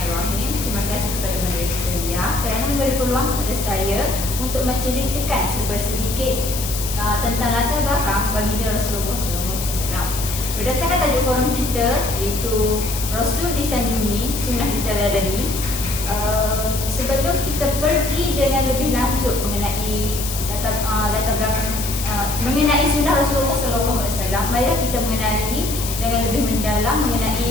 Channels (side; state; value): left; noise; hiss, 6 dB below the sound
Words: Terima kasih kepada moderator kerana memberi peluang kepada saya untuk menceritakan sedikit tentang latar belakang baginda Rasulullah SAW. Berdasarkan tajuk forum kita iaitu Rasul disanjungi, sunnah diteladani. Sebelum kita pergi dengan lebih lanjut mengenai latar belakang mengenai sunnah Rasulullah SAW, marilah kita mengenali dengan lebih mendalam